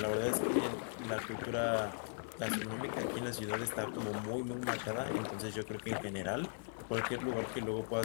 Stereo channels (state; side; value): silent; right; digital silence